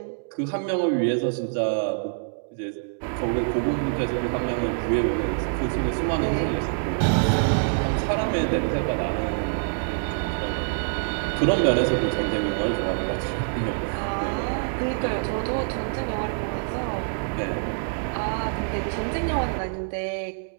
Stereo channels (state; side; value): silent; left; digital silence